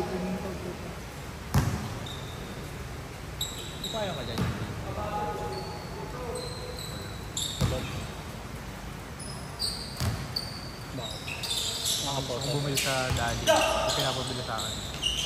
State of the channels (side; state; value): both; identical; correlation 1.00